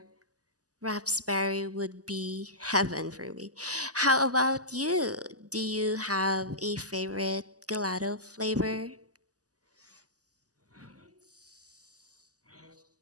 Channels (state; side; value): late; left; 0.67 ms